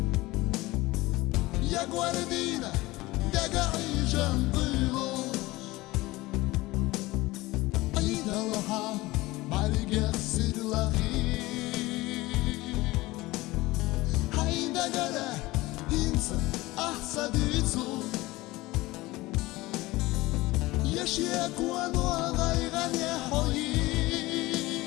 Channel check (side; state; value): right; quieter; 20.0 dB